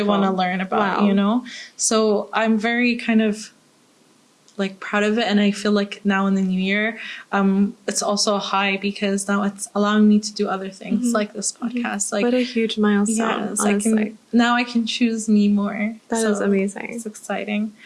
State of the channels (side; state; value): both; identical; correlation 1.00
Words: want to learn about, you know? So I'm very kind of like proud of it. And I feel like now in the new year, it's also a high, because now it's allowing me to do other things like this podcast. Like, what a huge milestone. yes, honestly. I can choose me more. That is amazing. It's exciting.